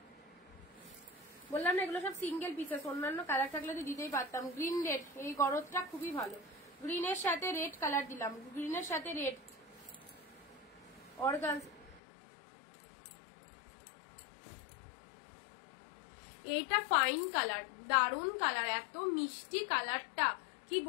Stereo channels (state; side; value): drops out; right; at 12.0 s